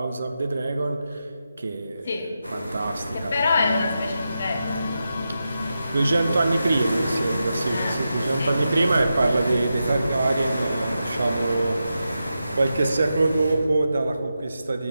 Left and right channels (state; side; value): inverted; both; correlation -0.89